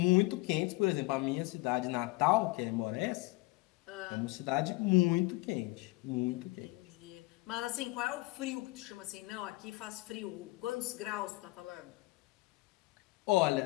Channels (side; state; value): right; quieter; 22.4 dB